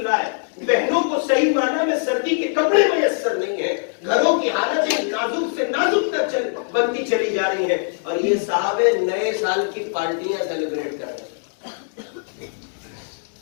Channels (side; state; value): right; silent; digital silence